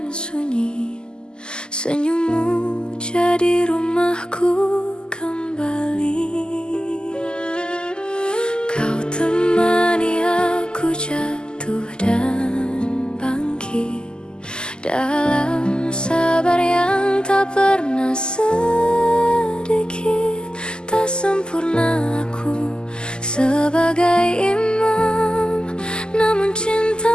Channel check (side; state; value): right; late; 0.046 ms